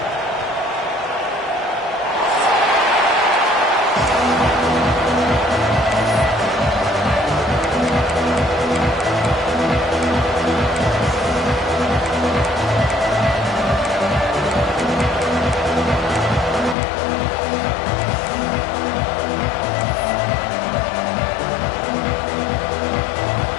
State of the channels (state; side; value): drops out; right; at 16.8 s